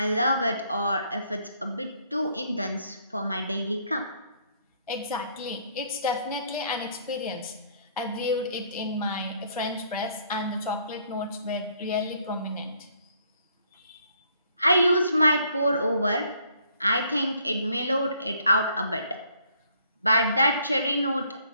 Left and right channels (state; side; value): inverted; both; correlation -0.65